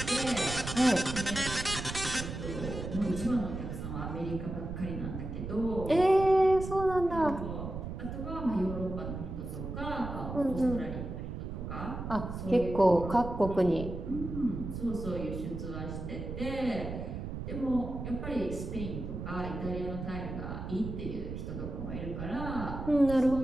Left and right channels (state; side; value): noise; right; rumble, 6 dB below the sound